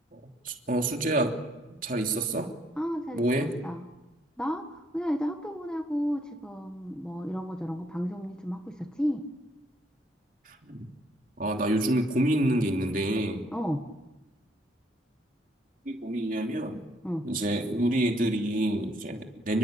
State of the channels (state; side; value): normal; both; correlation 0.68